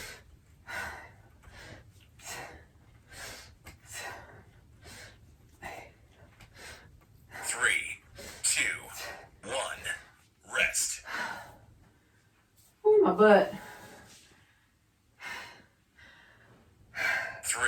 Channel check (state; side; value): identical; both; correlation 1.00